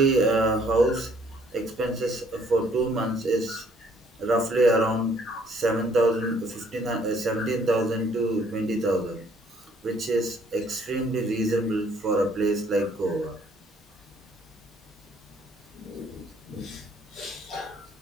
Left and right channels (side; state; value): both; normal; correlation 0.63